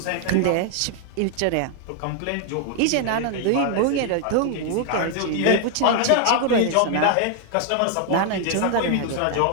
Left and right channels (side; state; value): both; different; correlation 0.00